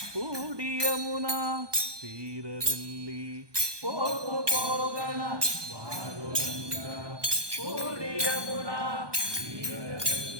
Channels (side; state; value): left; late; 1.2 ms